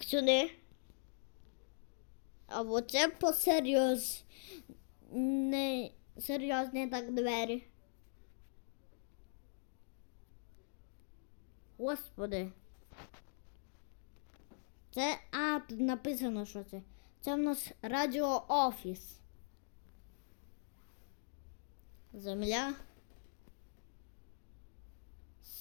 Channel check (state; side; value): silent; right; digital silence